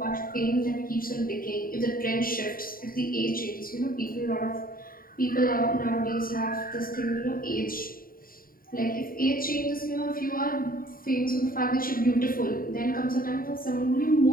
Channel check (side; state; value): right; late; 0.42 ms